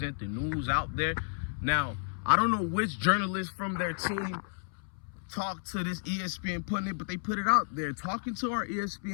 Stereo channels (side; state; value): right; silent; 57 dB below the other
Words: the news out there. Now, I don't know which journalist from their team talked to this ESPN pundit, but they put it out there. Talking to our